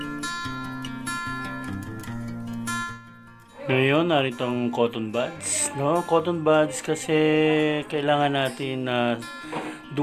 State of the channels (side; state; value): both; identical; correlation 1.00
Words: Ngayon, narito ang cotton buds. No? Cotton buds kasi kailangan natin na